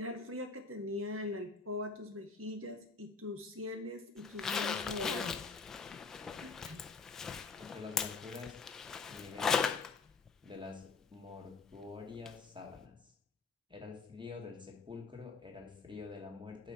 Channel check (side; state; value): right; quieter; 4.5 dB